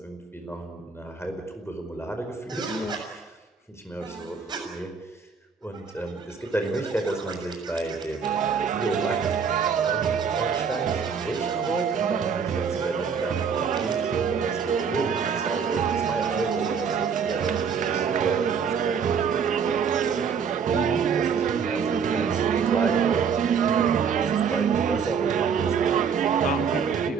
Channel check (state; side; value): quieter; left; 6.3 dB